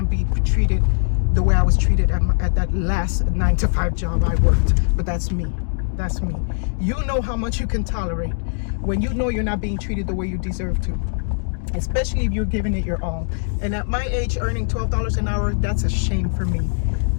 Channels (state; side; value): silent; right; digital silence